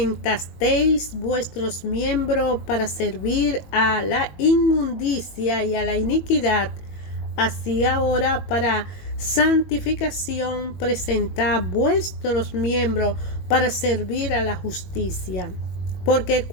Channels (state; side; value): late; right; 21 ms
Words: vuestros miembros para servir a la inmundicia y a la iniquidad, así ahora para santificación presentad vuestros miembros para servir a la justicia. Porque